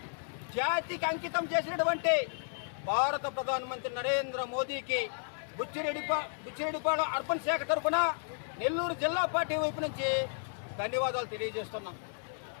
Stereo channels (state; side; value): silent; right; 56 dB below the other